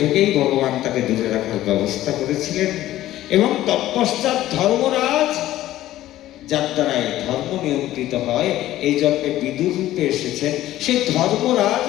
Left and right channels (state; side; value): quieter; right; 14.4 dB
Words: থেকেই ভগবান তাকে দূরে রাখার ব্যবস্থা করেছিলেন, এবং তৎপশ্চাৎ ধর্মরাজ, যার দ্বারাই ধর্ম নিয়ন্ত্রিত হয়, এই জন্মে বিদুর রূপে এসেছেন। সেই ধর্মরাজ